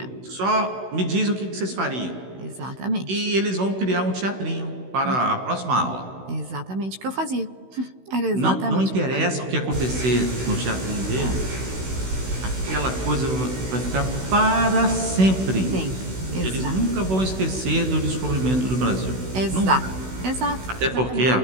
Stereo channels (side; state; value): left; late; 16 ms